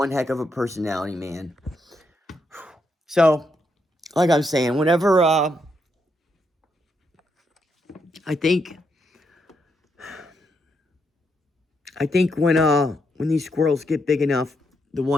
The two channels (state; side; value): normal; both; correlation 0.79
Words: heck of a personality, man. So, like I'm saying, whenever, I think when these squirrels get big enough, the